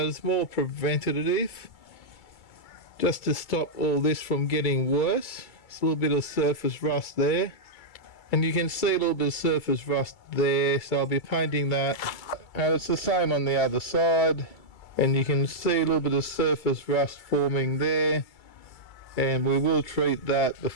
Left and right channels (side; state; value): right; late; 2.3 ms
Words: it's more preventative, just to stop all this from getting worse. It's a little bit of surface rust there. And you can see a little bit of surface rust there, so I'll be painting that. And it's the same on the other side. And you can see a little bit of surface rust forming there. And we will treat that